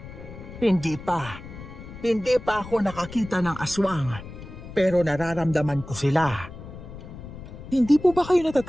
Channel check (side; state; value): left; noise; rumble, 13 dB below the sound